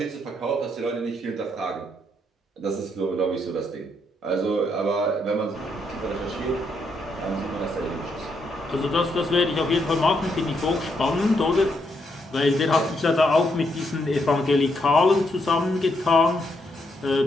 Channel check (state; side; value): normal; both; correlation 0.77